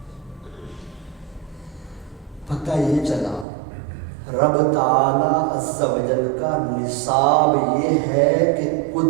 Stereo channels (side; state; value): left; drops out; at 3.5 s